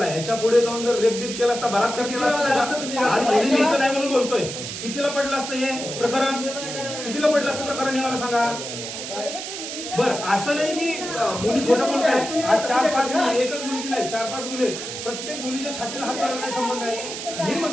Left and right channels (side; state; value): right; noise; hiss, 7 dB below the sound